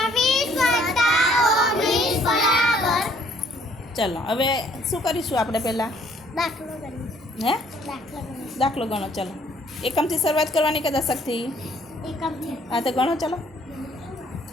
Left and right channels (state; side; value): normal; both; correlation 0.62